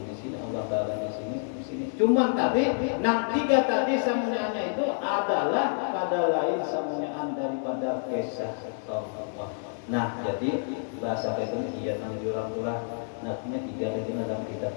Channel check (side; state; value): right; silent; digital silence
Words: di sini, Allah Taala di sini. Cuman tadi, tiga tadi samunyanya itu adalah pada lain samunyaan daripada kisah Allah. Nah, jadi bahasa itu iya nang jurang-jurang. Nantinya tiga itu dalam kita